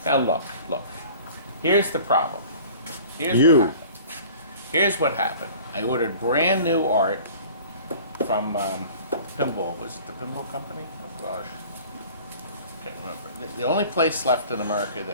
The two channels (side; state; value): both; inverted; correlation -0.46